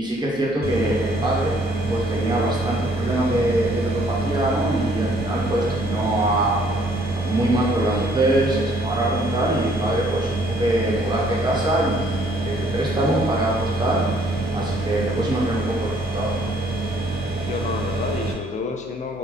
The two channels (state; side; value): noise; left; hum, 26 dB below the sound